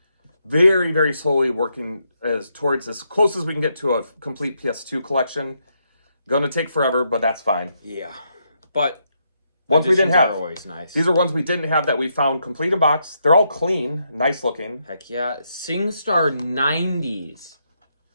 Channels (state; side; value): inverted; both; correlation -0.79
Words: very, very slowly working towards as close as we can get to a complete PS2 collection. Gonna take forever, but that's fine. Yeah. But ones we didn't have. Are always nice. These are ones we didn't have that we found complete in box. They're all clean, nice looking. Heck yeah. SingStar 90s.